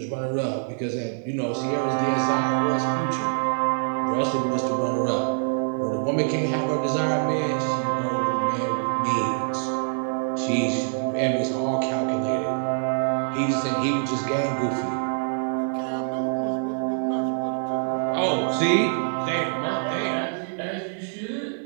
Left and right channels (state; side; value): silent; left; 56 dB below the other